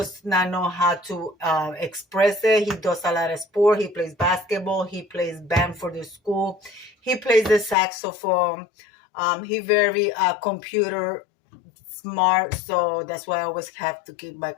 not know how to express it. He does a lot of sport. He plays basketball. He plays band for the school. He plays the saxophone. He very computer smart, so that's why I always have to keep my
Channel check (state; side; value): drops out; right; at 7.8 s